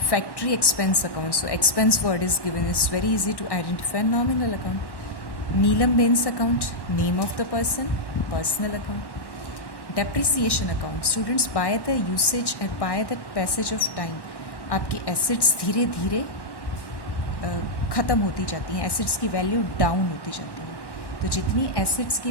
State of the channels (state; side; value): late; right; 1.1 ms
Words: Factory expense account. So expense word is given. It's very easy to identify. Nominal account. Neelam Bain's account. Name of the person. Personal account. Depreciation account. Students, by the usage and by the passage of time, आपकी assets धीरे धीरे ख़त्म होती जाती हैं. Assets की value down होती जाती है. तो जितनी एसेट्स की